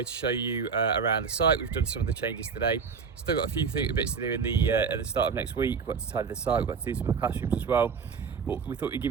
to show you around the site. We've done some of the changes today. Still got a few bits to do in at the start of next week. We've got to tidy the site, we've got to do some of the classrooms as well. But we thought we'd give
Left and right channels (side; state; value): left; quieter; 5.8 dB